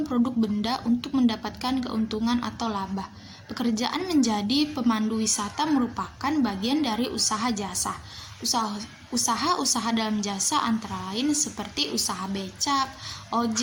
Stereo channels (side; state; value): both; identical; correlation 1.00